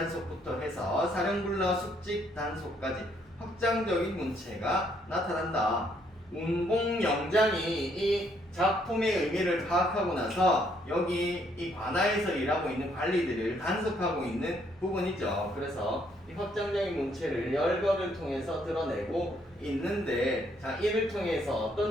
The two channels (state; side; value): normal; both; correlation 0.70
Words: 해서 사령불러 숙직 단속까지 확장적인 문체가 나타난다. 운봉영장이 이 작품의 의미를 파악하고 나서 여기 이 관아에서 일하고 있는 관리들을 단속하고 있는 부분이죠. 그래서 이 확장적인 문체를 열거를 통해서 드러내고 있는데, 자, 이를 통해서